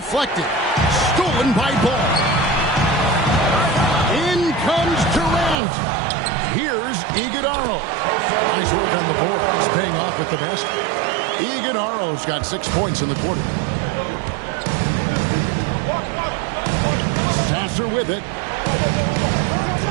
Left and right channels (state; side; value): drops out; left; at 5.6 s